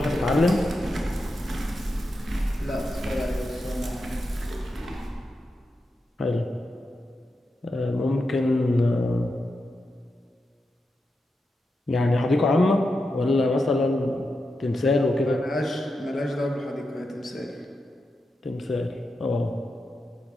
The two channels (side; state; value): both; normal; correlation 0.88